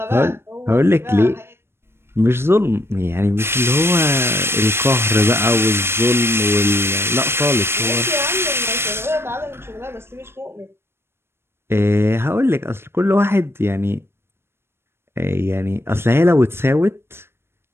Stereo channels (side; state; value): left; late; 0.12 ms